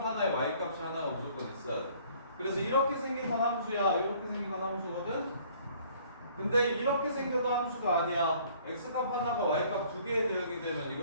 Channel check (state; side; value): inverted; both; correlation -0.57